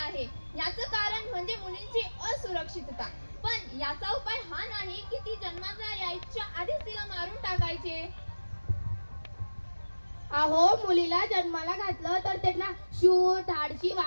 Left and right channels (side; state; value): both; inverted; correlation -1.00